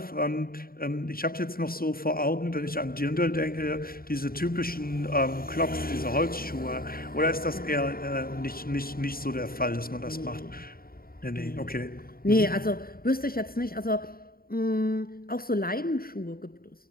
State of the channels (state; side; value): late; right; 0.43 ms